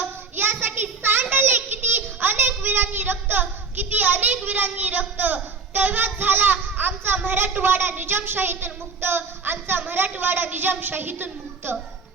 यासाठी सांडले किती अनेक वीरांनी रक्त, किती अनेक वीरांनी रक्त. तेव्हाच झाला आमचा मराठवाडा निजामशाहीतून मुक्त, आमचा मराठवाडा निजामशाहीतून मुक्त.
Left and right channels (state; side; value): quieter; left; 4.7 dB